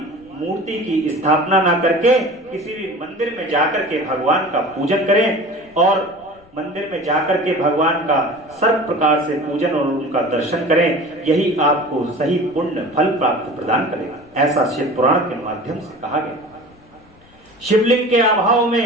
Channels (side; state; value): left; noise; rumble, 28 dB below the sound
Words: मूर्ति की स्थापना ना करके किसी भी मंदिर में जाकर के भगवान का पूजन करें और मंदिर में जाकर के भगवान का सर्व प्रकार से पूजन और उनका दर्शन करें। यही आपको सही पुण्य फल प्राप्त प्रदान करेगा, ऐसा शिव पुराण के माध्यम से कहा गया। शिवलिंग के अभाव